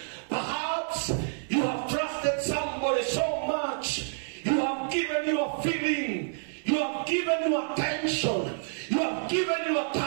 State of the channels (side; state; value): left; silent; digital silence